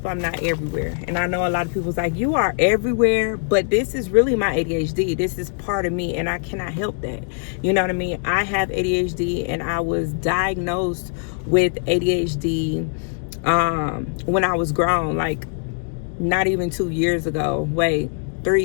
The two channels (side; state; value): right; silent; 64 dB below the other